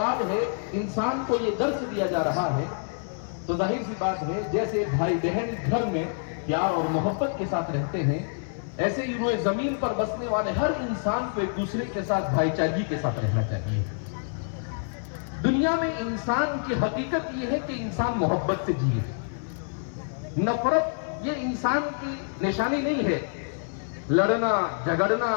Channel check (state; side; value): silent; right; digital silence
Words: ہے، انسان کو یہ درس دیا جا رہا ہے تو ظاہر سی بات ہے جیسے بھائی بہن گھر میں پیار اور محبت کے ساتھ رہتے ہیں، ایسے ہی روئے زمین پر بسنے والے ہر انسان کو ایک دوسرے کے ساتھ بھائی چارگی کے ساتھ رہنا چاہیے. دنیا میں انسان کی حقیقت یہ ہے کہ انسان محبت سے جیے. نفرت یہ انسان کی نشانی نہیں ہے. لڑنا جھگڑنا